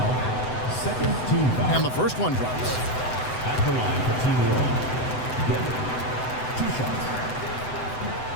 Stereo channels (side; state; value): right; late; 7.9 ms